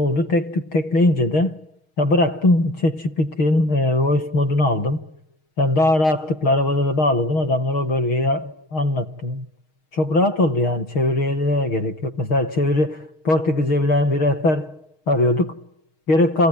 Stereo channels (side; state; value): right; late; 6.4 ms